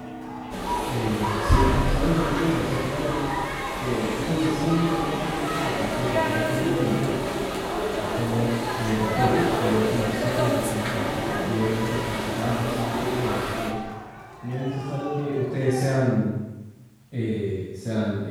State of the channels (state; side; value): identical; both; correlation 1.00